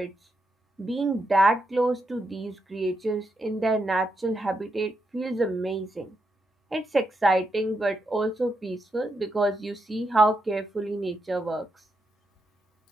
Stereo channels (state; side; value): normal; both; correlation 0.82